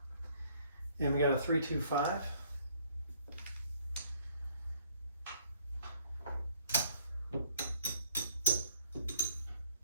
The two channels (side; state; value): both; inverted; correlation -0.63